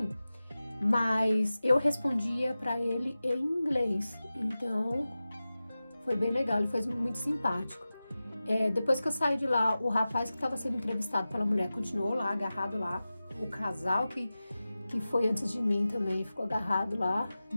mas eu respondia para ele em inglês, então foi bem legal, ele foi muito simpático. Depois que eu saí de lá, o rapaz que estava sendo entrevistado pela mulher continuou lá, agarrado lá. O casal que foi antes de mim também ficou agarrado lá,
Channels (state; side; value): inverted; both; correlation -0.95